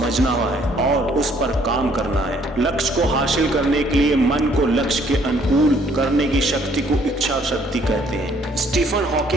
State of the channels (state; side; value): normal; both; correlation 0.63